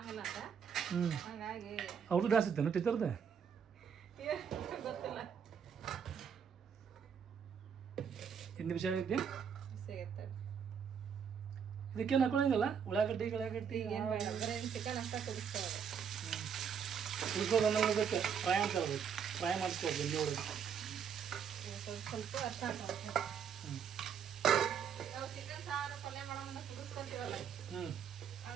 ಅಂತ. ಹಂಗಾಗಿ ಅವ್ರದ್ದು ಡ್ಯಾನ್ಸ್ ಇತ್ತೇನು ಟೀಚರ್ದೆ? ಗೊತ್ತಿಲ್ಲ. ಹಿಂದಿ ವಿಷಯ ಐತಿ ಸಿಗುತ್ತೆ. ಇದಕ್ಕೇನು ಹಾಕೊಳ್ಳಂಗಿಲ್ಲ ಉಳ್ಳಾಗಡ್ಡಿ ಏನು ಬೇಡ, ಬರೀ ಚಿಕನ್ ಅಷ್ಟ ಕುದಿಸ್ತಾರೆ. ಉಳ್ಕೋದು ಅನ್ನೋದಕ್ಕೆ ಫ್ರೈ ಅಂತ ಹೇಳ್ಬೇಕು. ಫ್ರೈ ಮಾಡಿಸ್ಕೋದು ಇಲ್ಲಿ ಒಳಗೆ ಸ್ವಲ್ಪ ಅರ್ಥ ಹಾಕೋಬೇಕು. ನಾವು ಚಿಕನ್ ಸಾರು ಪಲ್ಯ ಮಾಡೋಣ ಕುದಿಸ್ಕೊಂತೀವಲ್ಲ,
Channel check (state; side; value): quieter; left; 7.3 dB